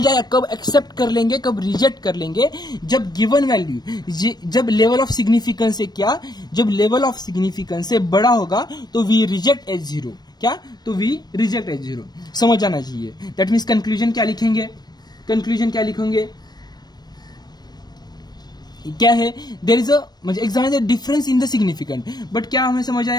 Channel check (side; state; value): right; late; 0.19 ms